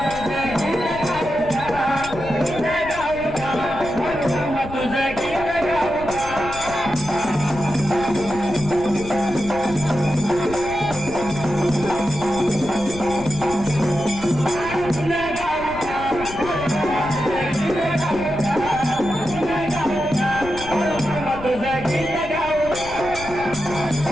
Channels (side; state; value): left; noise; rumble, 13 dB below the sound